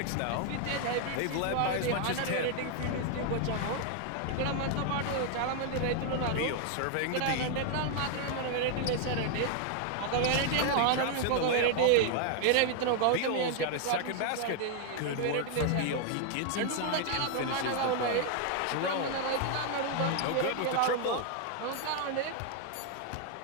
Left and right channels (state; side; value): different; both; correlation 0.00